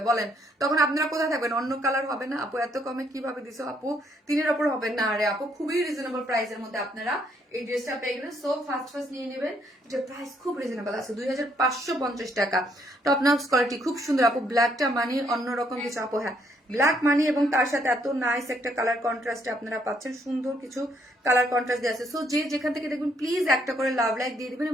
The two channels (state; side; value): normal; both; correlation 0.70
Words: বলেন তখন আপনারা কোথায় থাকবেন? অন্য কালার হবে না? আপু এত কমে কিভাবে দিছো আপু? 3-এর ওপর হবে না? আরে আপু, খুবই রিজনেবল প্রাইসের মধ্যে আপনারা এই ড্রেসটা পেয়ে গেলেন। সো ফার্স্ট নিয়ে নেবেন, এটা প্রাইস খুব রিজনেবল আছে, 2550 টাকা। টপ নক্স কোয়ালিটি, খুব সুন্দর আপু। ব্ল্যাকটা মানে অন্যরকম কিছু আপু, হ্যাঁ ব্ল্যাক মানি এবং তার সাথে এত নাইস একটা কালার কন্ট্রাস্ট আপনারা পাচ্ছেন, সুন্দর কিছু কালার কন্ট্রাস্ট দিয়ে আছে। সো যে যেখান থেকে দেখবেন প্লিজ একটা করে লাভ লাইক দিয়ে দিবেন